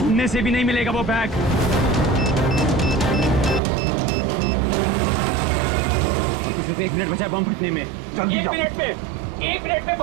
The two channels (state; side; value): drops out; left; at 3.6 s